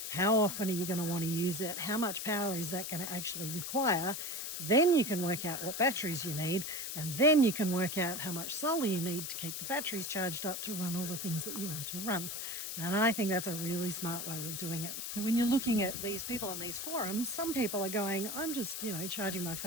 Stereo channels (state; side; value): noise; left; hiss, 5 dB below the sound